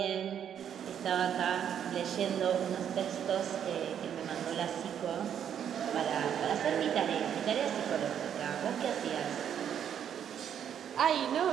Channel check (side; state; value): left; quieter; 9.0 dB